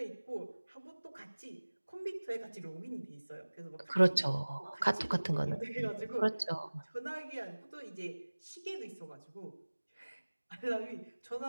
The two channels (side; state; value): both; inverted; correlation -1.00